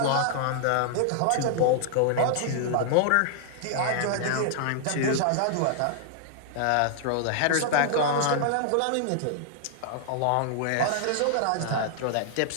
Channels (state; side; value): different; both; correlation -0.01